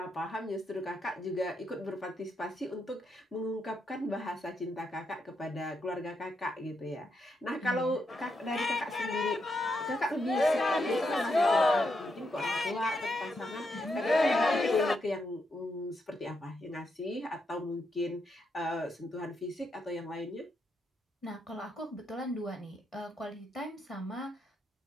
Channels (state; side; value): normal; both; correlation 0.81